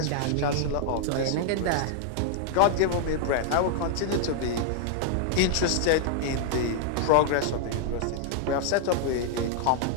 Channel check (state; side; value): different; both; correlation -0.01